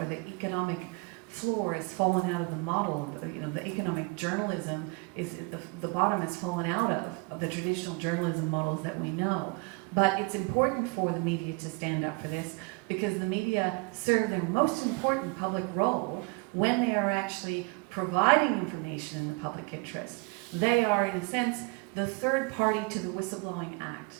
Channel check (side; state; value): left; quieter; 29.2 dB